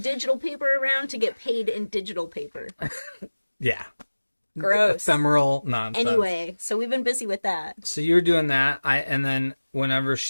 paper around to get paid in digital paper. Yeah. Gross. Ephemeral nonsense. Anyway, so we've been busy with that. So you're doing that. And then whenever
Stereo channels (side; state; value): both; inverted; correlation -1.00